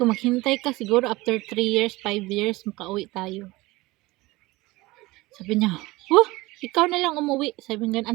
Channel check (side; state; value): left; quieter; 20.8 dB